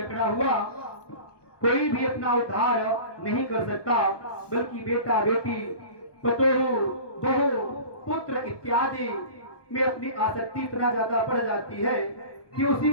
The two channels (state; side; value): late; right; 1.2 ms